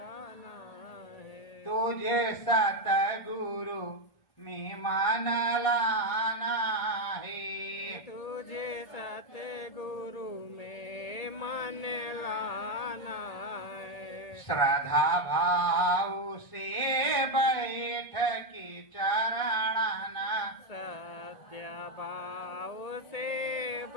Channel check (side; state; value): right; late; 1.5 ms